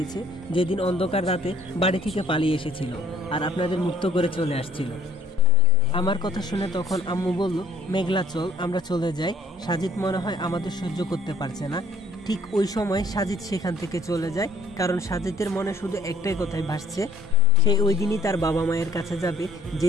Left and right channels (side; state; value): both; normal; correlation 0.58